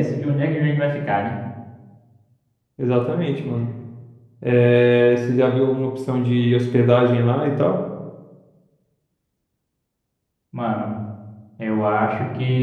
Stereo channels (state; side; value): identical; both; correlation 1.00